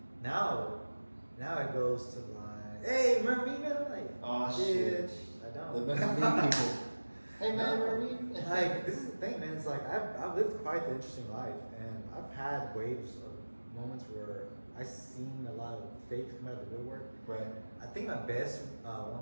Now it goes to like, hey, remember me, man? I'm like, oh shit, I don't. The remember me people. Hey man, remember me? Like, this is the thing, man. It's like I've lived quite an interesting life, and I've had waves of moments where I've seen a lot of fakes come out of the woodwork. Right. I think my best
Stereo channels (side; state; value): both; inverted; correlation -1.00